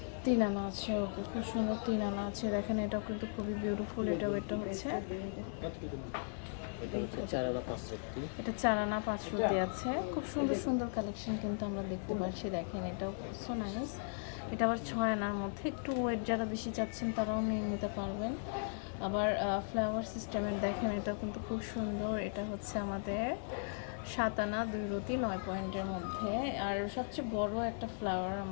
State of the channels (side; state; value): right; silent; digital silence